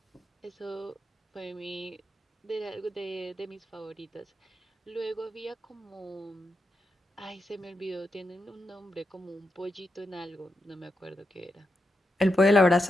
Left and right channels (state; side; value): normal; both; correlation 0.86